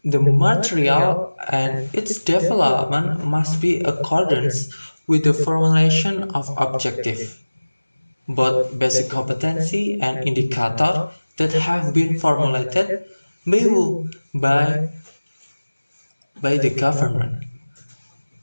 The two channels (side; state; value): both; inverted; correlation -1.00